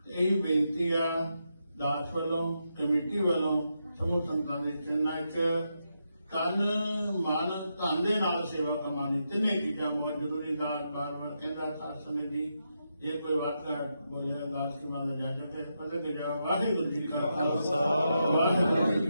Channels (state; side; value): inverted; both; correlation -0.84